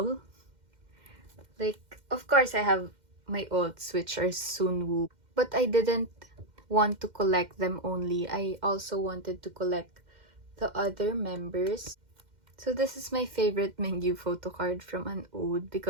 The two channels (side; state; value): left; late; 2.1 ms